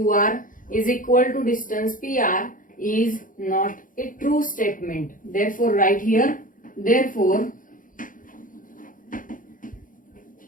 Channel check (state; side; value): late; right; 0.39 ms